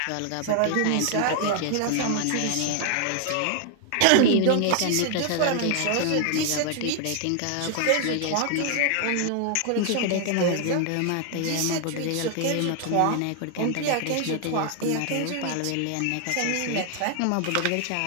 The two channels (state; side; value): different; both; correlation 0.00